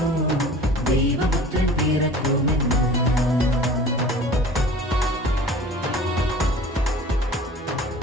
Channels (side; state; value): both; normal; correlation 0.43